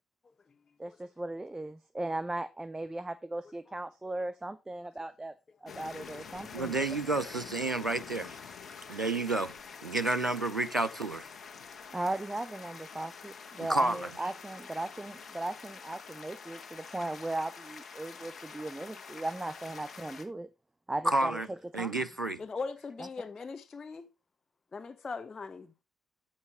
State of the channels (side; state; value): both; normal; correlation 0.73